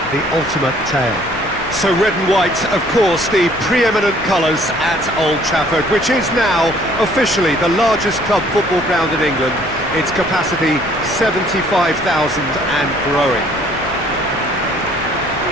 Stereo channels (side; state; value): left; noise; rumble, 18 dB below the sound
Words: the ultimate tale. So red and white, of course, the preeminent colours at Old Trafford, which is now officially the largest club football ground in England. Its capacity 75,000 and growing.